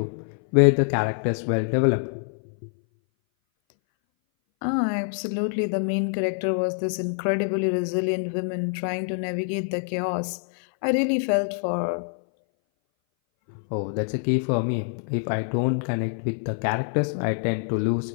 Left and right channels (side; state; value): right; silent; 59 dB below the other